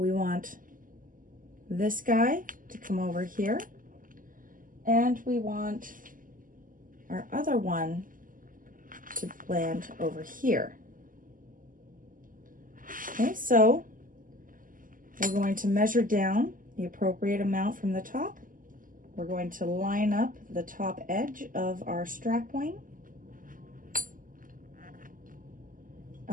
want this guy to come over here, and we want our other one to land over here. Okay, so we're going to measure down the appropriate amount from the top. We're going to line up the top edge of our strap wing,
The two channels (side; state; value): left; late; 0.40 ms